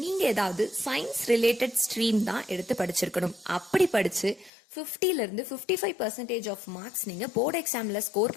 ஏதாவது சயின்ஸ் ரிலேட்டட் ஸ்ட்ரீம் தான் எடுத்து படிச்சிருக்கணும். அப்படி படிச்சு 50ல இருந்து 55% ஆஃப் மார்க்ஸ் நீங்க போர்டு எக்ஸாம்ல ஸ்கோர்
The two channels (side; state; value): right; drops out; at 4.5 s